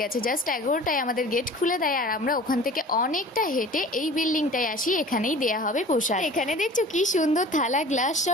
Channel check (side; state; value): both; normal; correlation 0.43